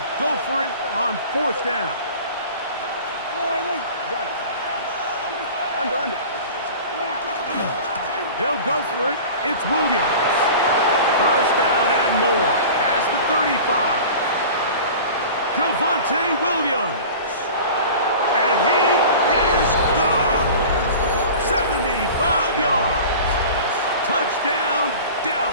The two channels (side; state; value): both; inverted; correlation -0.38